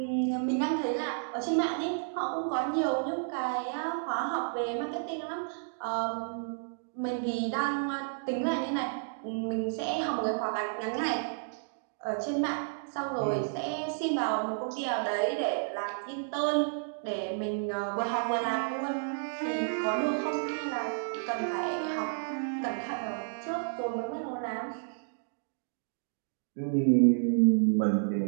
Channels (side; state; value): left; silent; digital silence